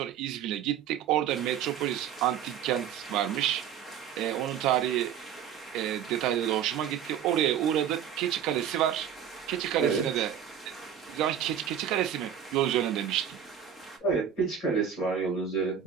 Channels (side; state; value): left; quieter; 9.0 dB